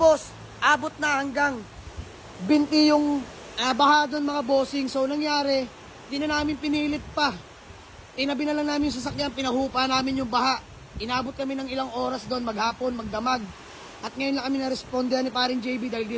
abot na hanggang binti yung baha doon mga bossing. So nangyari, di na namin pinilit pa. Tinabi na lang namin yung sasakyan, pinahupa namin yung baha. Inabot kami ng ilang oras doon, maghapon, magdamag. At ngayon lang kami na-responde ni paring JB dahil di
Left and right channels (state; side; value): identical; both; correlation 1.00